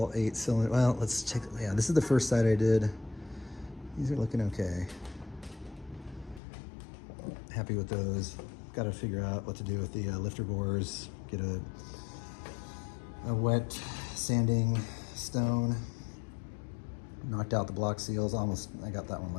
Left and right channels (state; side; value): drops out; right; at 6.4 s